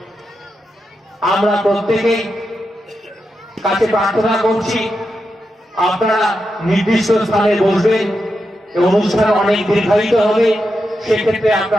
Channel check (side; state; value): both; normal; correlation 0.87